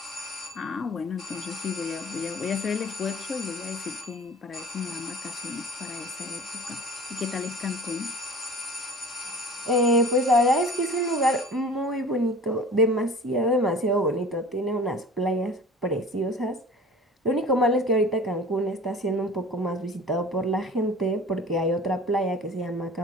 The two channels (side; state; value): both; normal; correlation 0.42